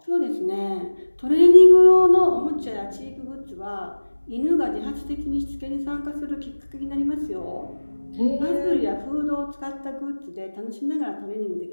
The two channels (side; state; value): both; inverted; correlation -1.00